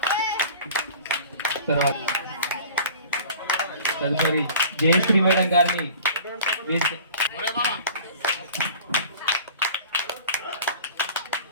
తర్వాత తదుపరి జయశ్రీ మేడం గారిని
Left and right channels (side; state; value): both; inverted; correlation -0.43